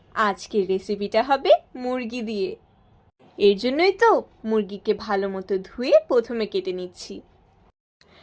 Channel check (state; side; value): identical; both; correlation 1.00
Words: আজকের রেসিপিটা হবে মুরগি দিয়ে। এর জন্যই তো মুরগিকে ভালো মতো ধুয়ে প্রথমে কেটে নিচ্ছি।